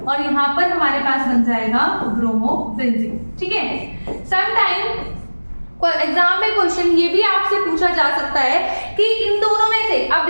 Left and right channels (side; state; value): both; inverted; correlation -1.00